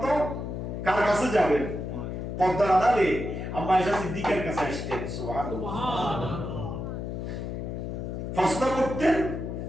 কার কাছে যাবেন? পর্দার আড়ালে আম্মা আয়েশা সিদ্দিকার কাছে আসতেন। সুবহানাল্লাহ। প্রশ্ন করতেন,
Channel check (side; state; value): left; noise; hum, 5 dB below the sound